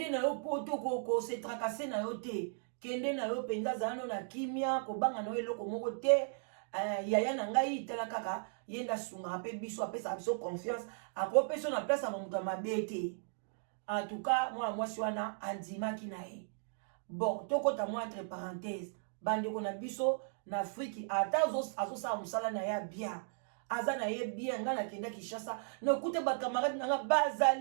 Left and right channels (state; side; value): silent; left; digital silence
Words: poto ko se tracasser na yo te kende na yo penza zano na kimia kobanga na eloko moko te yaya na ngai tala kaka yenda sunga pe biso apesa biso confiance akopesa na place ya moto mabe te en tout cas moi wana andimaki na ye bon tokota moi entre parenthèse bandeko na biso na Afrique ata azosala mosala na ya bien aza na ye bien nga na kenda Kinshasa na kute ba camarade nga